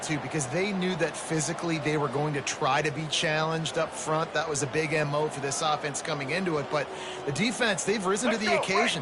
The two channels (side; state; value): both; identical; correlation 1.00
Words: too, because they knew that physically they were going to try to be challenged up front. That was a big MO for this offense coming into it. But the defense, they've risen to the